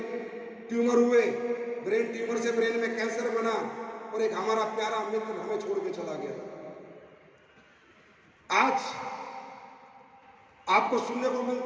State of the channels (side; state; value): both; identical; correlation 1.00